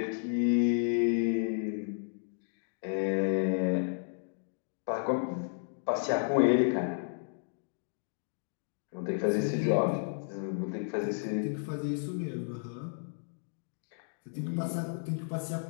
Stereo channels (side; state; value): right; silent; digital silence